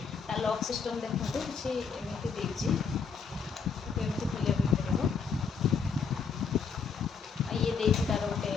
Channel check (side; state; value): right; quieter; 5.8 dB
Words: लॉक सिस्टम सिस्टम देखते किसी एमती देती एमती खोलिया पड़ो ये देती तार गोटे